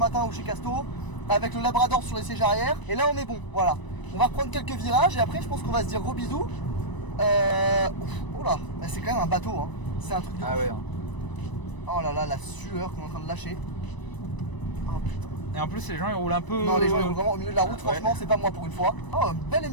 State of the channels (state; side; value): late; right; 1.0 ms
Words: ou chez Casto avec le Labrador sur les sièges arrière. Et là, on est bon. Voilà. On va reprendre quelques virages et après, je pense qu'on va se dire gros bisous. Oh là, c'est quand même un bateau. Hein. C'est un truc de ouf. Ouais. Oh là là, la sueur qu'on est en train de lâcher. Oh putain. Et en plus, les gens ils roulent un peu. Non, les gens ils roulent vraiment au milieu de la route, franchement, Ouais. c'est pas moi pour une fois. Oh, un bel